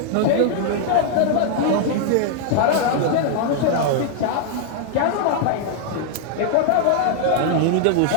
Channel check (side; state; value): both; different; correlation -0.01